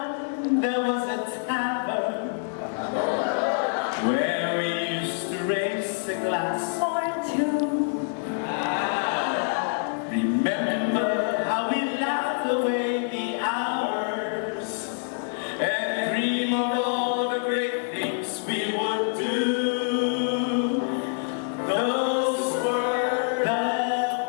there was a tavern where we used to raise a glass. Or two. Remember how we laughed away the hours and dream of all the great things we would do. Those were the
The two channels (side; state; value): right; silent; 55 dB below the other